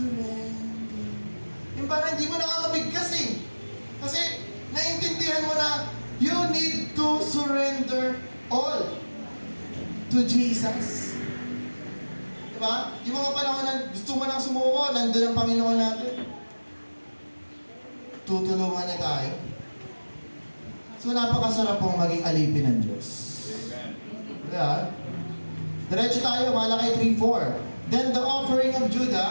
Yung parang hindi mo nakakabigkas eh. Kasi naiintindihan mo na you need to surrender all to Jesus. Di ba? Yung mga panahon na gusto mo nang sumuko, nandun ang Panginoon natin. Tutulungan na tayo. So napakasarap pong maging alipin ng Diyos. Amen. Diba? Diretso tayo, Malakay 3:4. Then the offering of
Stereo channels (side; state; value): both; inverted; correlation -1.00